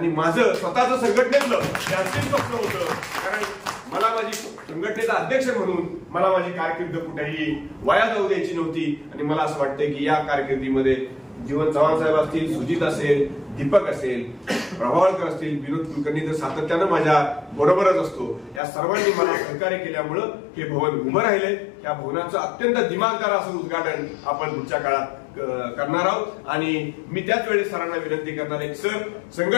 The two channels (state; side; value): drops out; right; at 18.6 s